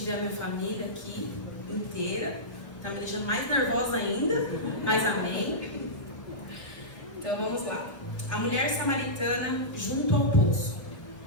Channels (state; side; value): late; right; 1.3 ms